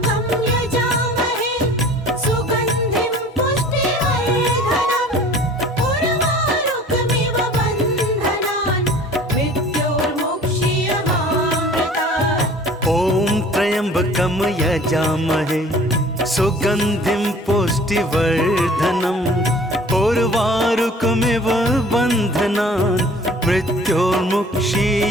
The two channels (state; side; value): normal; both; correlation 0.48